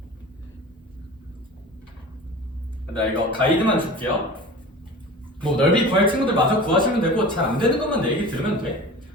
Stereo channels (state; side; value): normal; both; correlation 0.37